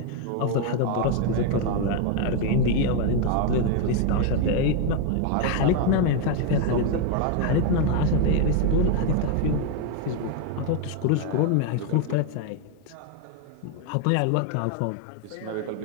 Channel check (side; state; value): both; different; correlation 0.01